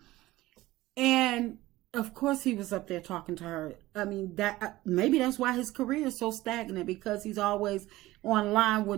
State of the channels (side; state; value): left; quieter; 17.5 dB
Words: and of course he was up there talking to her. I mean, that maybe that's why his career is so stagnant, because he's always online